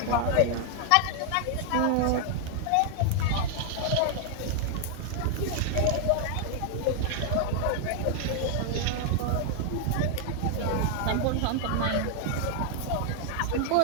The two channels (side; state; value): both; different; correlation 0.00